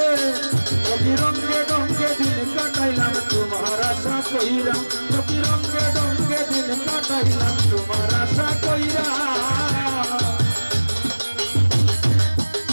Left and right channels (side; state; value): both; inverted; correlation -1.00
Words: ডঙ্গে দিন কাটাইলাম তোমার আশা কইরা রঙ্গে ডঙ্গে দিন কাটাইলাম তোমার আশা কইরা